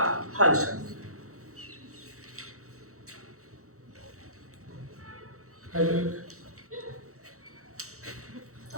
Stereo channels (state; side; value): late; left; 0.64 ms